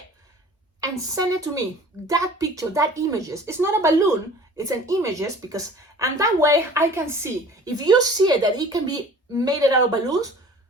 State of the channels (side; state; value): both; normal; correlation 0.46